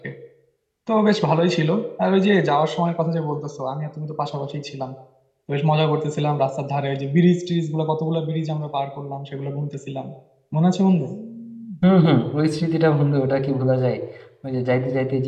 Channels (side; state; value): both; identical; correlation 1.00